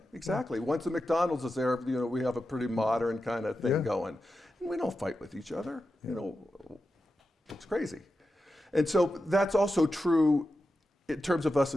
exactly. Yeah. Once a McDonald's is there, we have a pretty modern kind of thing going. And we don't fight with each other. It's crazy. And so that's also true in terms of us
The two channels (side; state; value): both; normal; correlation 0.90